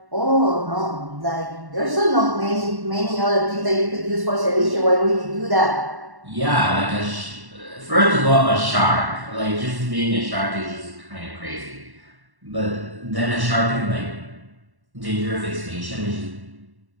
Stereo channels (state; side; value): late; left; 1.1 ms